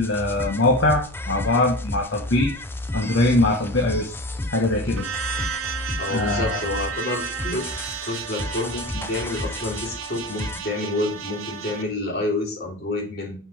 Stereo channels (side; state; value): both; normal; correlation 0.30